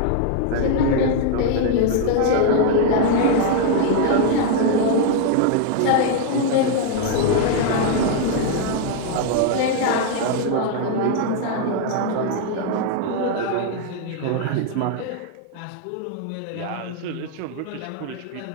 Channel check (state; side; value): different; both; correlation 0.00